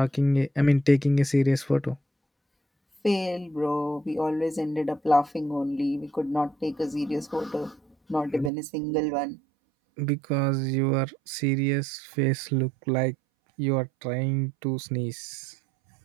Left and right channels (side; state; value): left; drops out; at 8.5 s